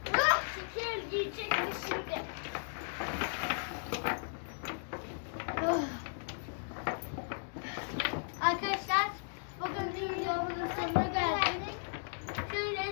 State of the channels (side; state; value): right; silent; digital silence